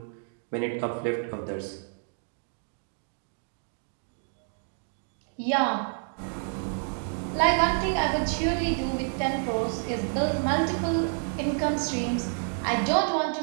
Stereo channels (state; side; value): silent; left; 59 dB below the other